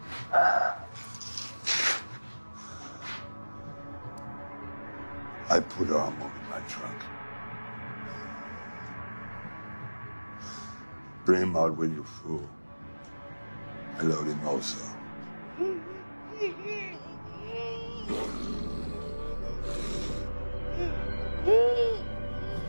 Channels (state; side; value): inverted; both; correlation -1.00